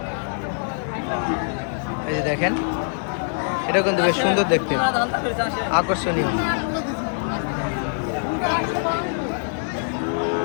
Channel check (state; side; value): silent; right; digital silence